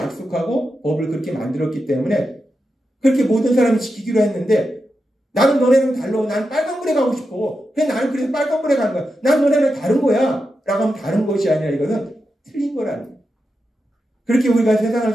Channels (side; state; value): both; normal; correlation 0.88